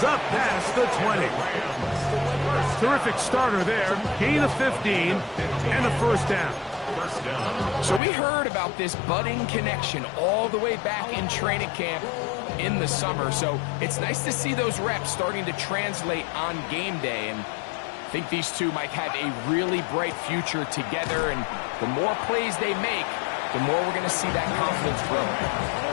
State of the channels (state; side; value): drops out; right; at 8.0 s